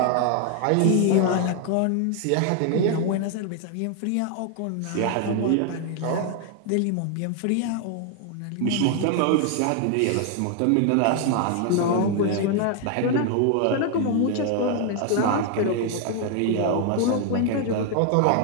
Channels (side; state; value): both; different; correlation 0.00